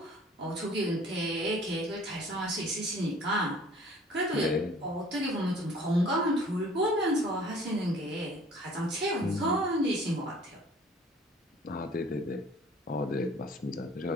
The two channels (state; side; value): normal; both; correlation 0.52